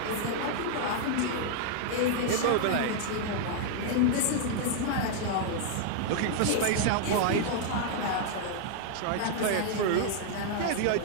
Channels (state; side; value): different; both; correlation -0.01